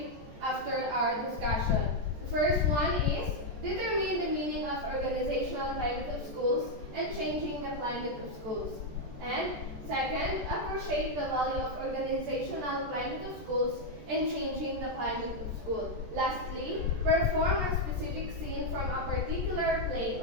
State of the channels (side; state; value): left; late; 14 ms